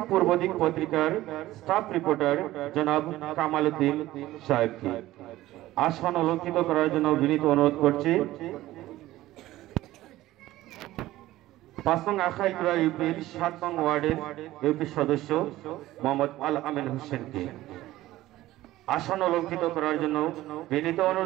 পূর্বদিক পত্রিকার স্টাফ রিপোর্টার জনাব কামাল উদ্দিন সাহেবকে। আসন অলঙ্কৃত করার জন্য বিনীত অনুরোধ করছি ৫ নং আখাইপুরা ইউপির ৭ নং ওয়ার্ডের ইউপি সদস্য মোহাম্মদ আল আমিন হোসেনকে। আসন অলঙ্কৃত করার জন্য বিনীত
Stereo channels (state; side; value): quieter; left; 16.0 dB